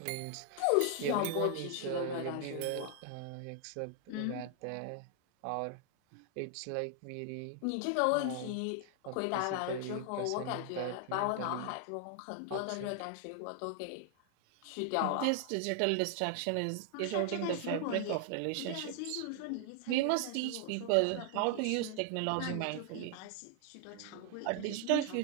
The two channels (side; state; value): both; different; correlation 0.00